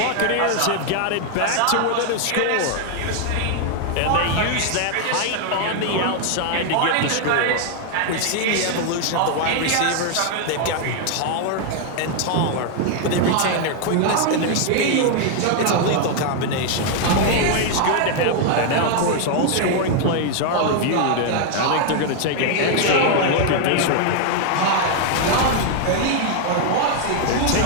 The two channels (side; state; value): both; different; correlation 0.00